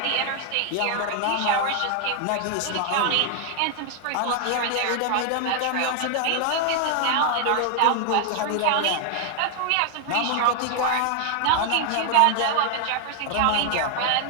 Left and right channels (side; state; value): both; different; correlation 0.00